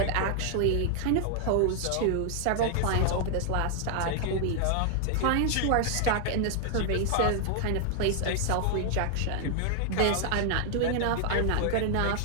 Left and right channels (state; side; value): different; both; correlation -0.01